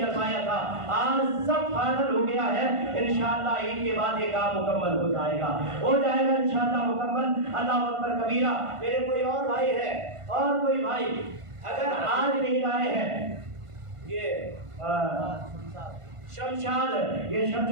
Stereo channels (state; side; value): late; left; 1.5 ms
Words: پایا تھا. آج سب فائنل ہو گیا ہے. انشاءاللہ عید کے بعد یہ کام مکمل ہو جائے گا انشاءاللہ مکمل. اللہ اکبر کبیرہ. میرے کوئی اور بھائی ہے اور کوئی بھائی اگر آج نہیں لائے ہیں یہ شمشاد یہ